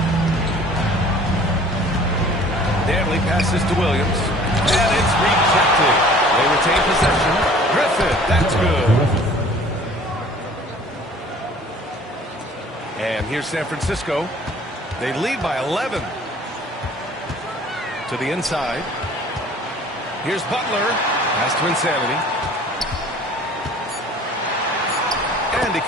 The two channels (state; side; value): normal; both; correlation 0.50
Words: Danley passes to Williams. And it's rejected. They retain possession. Griffith, that's good. And here's San Francisco. They lead by 11. To the inside. Here's Butler. Pass to Insanity. And he